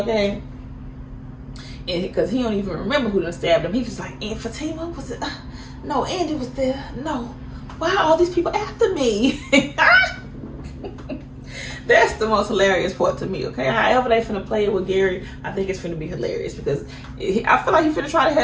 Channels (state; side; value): identical; both; correlation 1.00